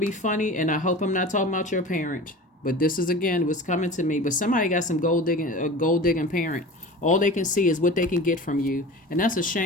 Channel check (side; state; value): both; normal; correlation 0.36